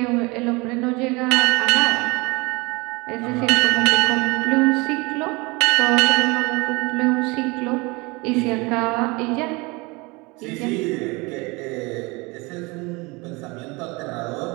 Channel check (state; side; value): quieter; left; 25.8 dB